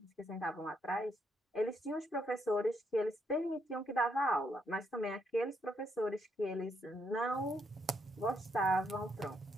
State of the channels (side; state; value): both; normal; correlation 0.76